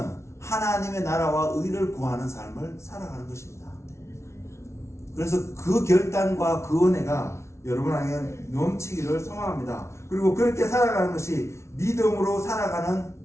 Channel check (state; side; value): late; right; 0.13 ms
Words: 하나님의 나라와 의를 구하는 삶을 살아가는 것입니다. 그래서 그 결단과 그 은혜가 여러분에게 넘치기를 소망합니다. 그리고 그렇게 살아가는 것이 믿음으로 살아가는